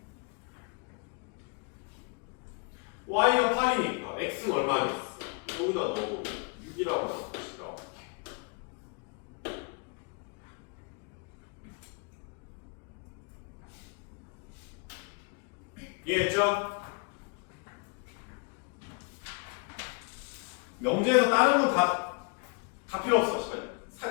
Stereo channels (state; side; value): quieter; right; 34.3 dB